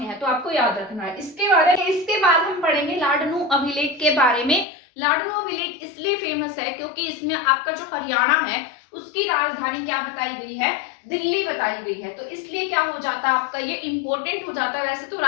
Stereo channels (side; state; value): right; drops out; at 4.7 s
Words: है, तो आपको याद रखना है। इसके बाद हम पढ़ेंगे लाडनू अभिलेख के बारे में। लाडनू अभिलेख इसलिए फेमस है क्योंकि इसमें आपका जो हरियाणा है उसकी राजधानी क्या बताई गई है, दिल्ली बताई गई है। तो इसलिए क्या हो जाता है आपका, ये इंपॉर्टेंट हो जाता है। वैसे तो